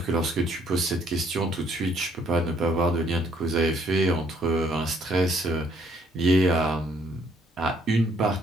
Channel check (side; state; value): both; normal; correlation 0.65